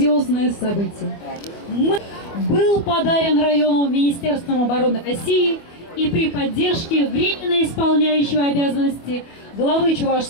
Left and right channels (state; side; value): late; right; 25 ms